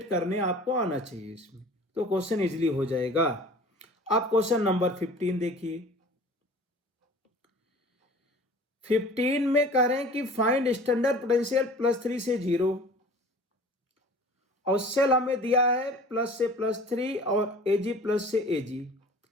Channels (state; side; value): normal; both; correlation 0.45